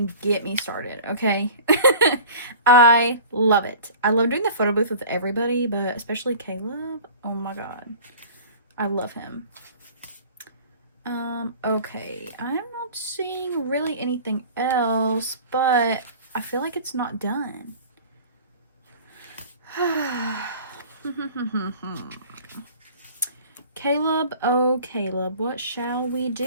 get me started, okay? I love it. I love doing the photo booth with everybody, but especially Caleb. Oh my god. I love him. Okay. I'm not seeing really anything else, but I feel like it's not done. Caleb, oh Caleb, what shall we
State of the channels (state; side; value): inverted; both; correlation -0.42